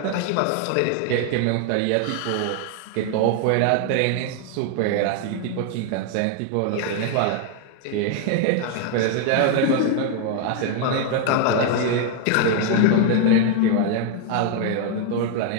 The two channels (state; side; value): different; both; correlation 0.00